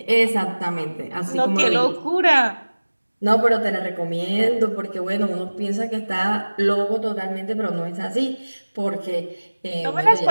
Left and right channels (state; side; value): inverted; both; correlation -1.00